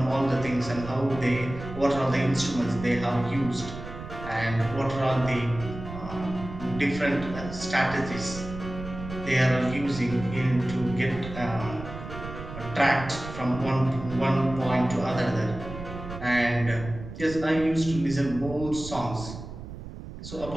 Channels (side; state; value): right; noise; rumble, 11 dB below the sound